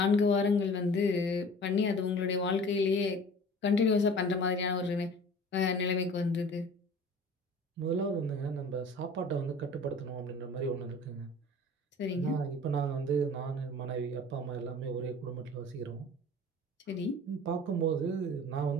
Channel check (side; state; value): both; normal; correlation 0.43